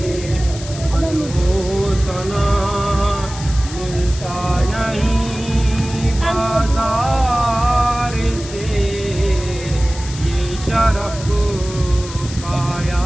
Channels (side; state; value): left; noise; hiss, 13 dB below the sound